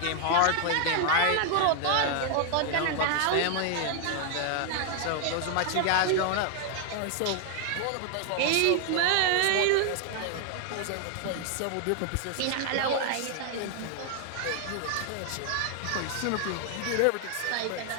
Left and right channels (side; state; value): both; different; correlation 0.00